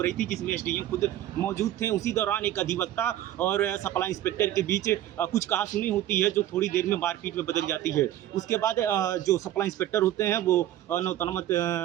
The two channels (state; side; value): quieter; left; 12.8 dB